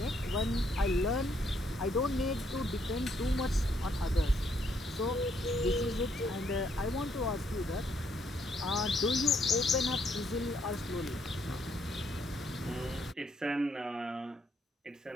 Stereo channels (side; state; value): both; normal; correlation 0.71